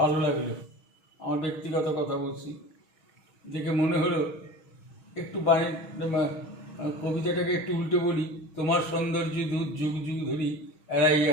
ভালো লাগলো। আমার ব্যক্তিগত কথা বলছি, দেখে মনে হলো একটু বাণী কবিতাটাকে একটু উল্টে বলি। তোমার সৌন্দর্য দূত যুগ যুগ ধরি,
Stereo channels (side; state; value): right; late; 6.3 ms